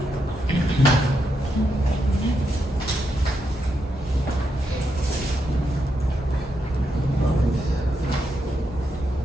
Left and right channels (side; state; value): both; normal; correlation 0.82